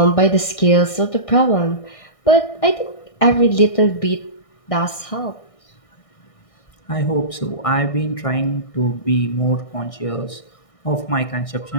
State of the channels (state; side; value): late; right; 1.6 ms